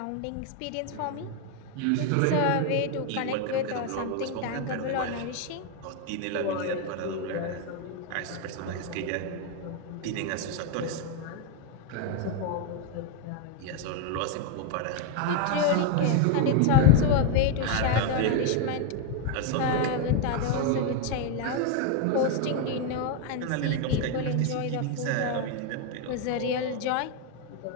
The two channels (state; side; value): different; both; correlation 0.01